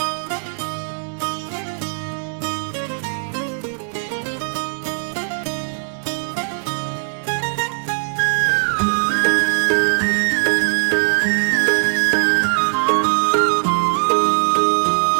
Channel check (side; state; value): left; silent; digital silence